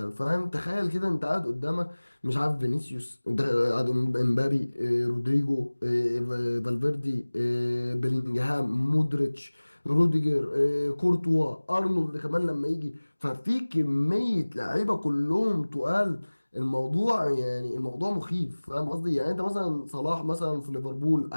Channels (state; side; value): inverted; both; correlation -1.00